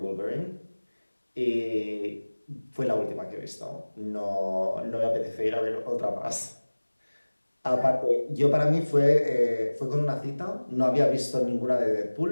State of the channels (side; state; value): both; inverted; correlation -1.00